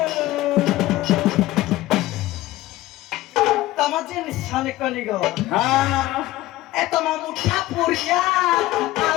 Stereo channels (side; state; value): right; quieter; 16.8 dB